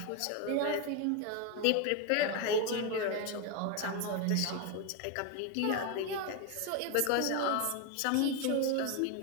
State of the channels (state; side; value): different; both; correlation 0.02